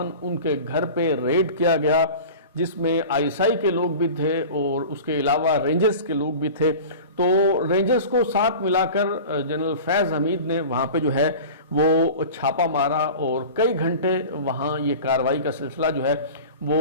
ان کے گھر پہ ریڈ کیا گیا، جس میں آئی ایس آئی کے لوگ بھی تھے اور اس کے علاوہ رینجرز کے لوگ بھی تھے۔ تو رینجرز کو ساتھ ملا کر جنرل فیض حمید نے وہاں پہ جو ہے وہ چھاپا مارا، اور کئی گھنٹے وہاں یہ کارروائی کا سلسلہ جو ہے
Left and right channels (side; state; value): both; inverted; correlation -0.37